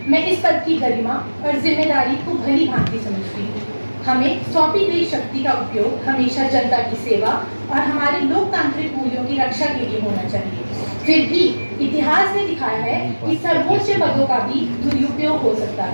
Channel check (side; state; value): both; inverted; correlation -1.00